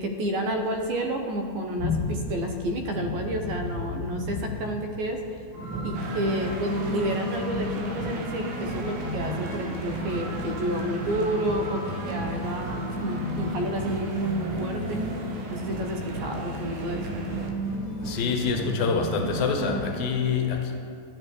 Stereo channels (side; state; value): left; late; 14 ms